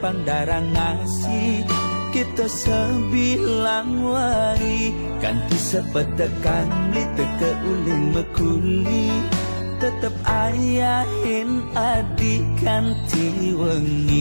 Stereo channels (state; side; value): inverted; both; correlation -1.00